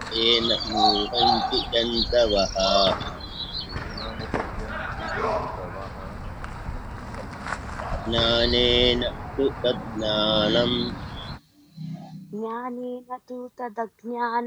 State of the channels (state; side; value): identical; both; correlation 1.00